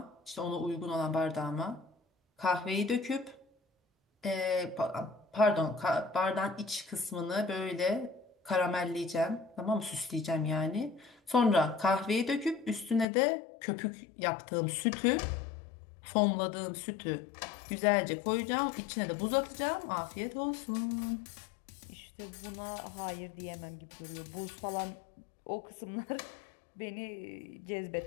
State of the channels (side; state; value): right; drops out; at 13.1 s